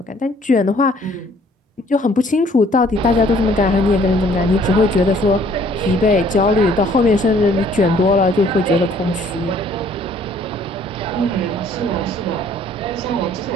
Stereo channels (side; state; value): both; normal; correlation 0.59